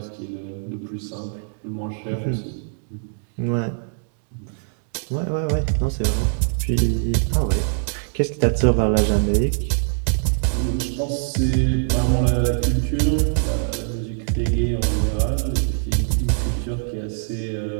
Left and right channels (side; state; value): left; silent; digital silence